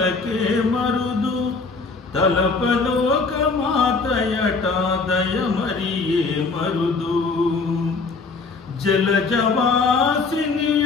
మరుదు తలపలోక మాతయట దయమరియే మరుదు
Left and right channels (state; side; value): quieter; right; 4.2 dB